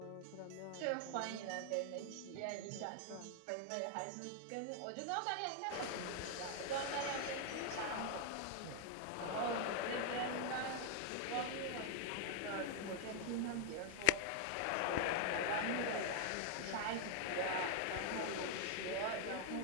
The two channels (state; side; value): different; both; correlation 0.00